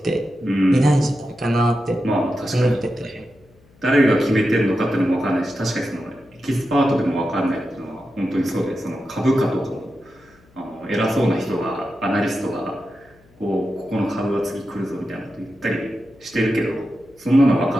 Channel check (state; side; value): noise; left; hum, 30 dB below the sound